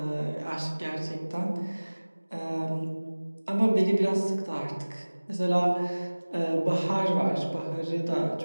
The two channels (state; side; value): inverted; both; correlation -1.00